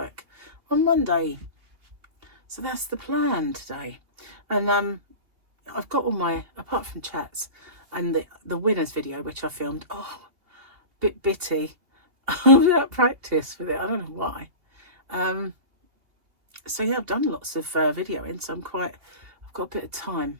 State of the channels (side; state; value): left; late; 2.8 ms